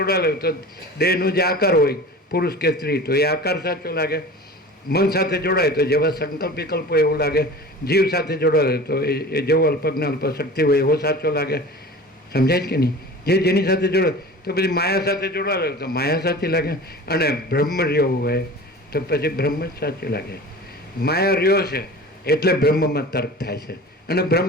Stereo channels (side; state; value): both; normal; correlation 0.38